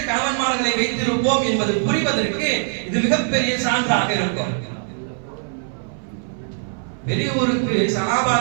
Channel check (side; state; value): left; silent; 60 dB below the other